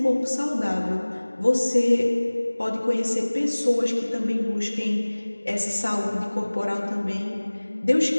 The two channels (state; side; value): inverted; both; correlation -1.00